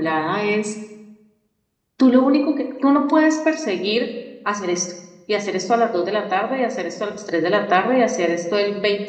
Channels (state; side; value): identical; both; correlation 1.00